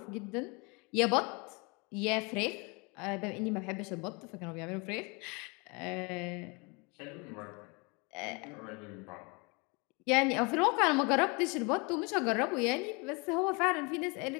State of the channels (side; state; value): right; quieter; 29.8 dB